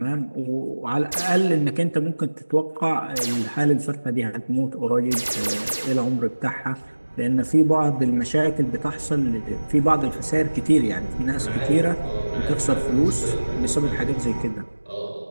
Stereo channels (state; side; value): inverted; both; correlation -1.00